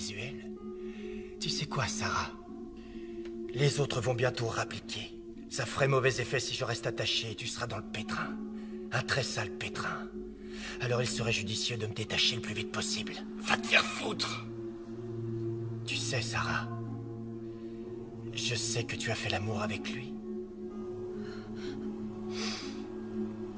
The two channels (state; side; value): identical; both; correlation 1.00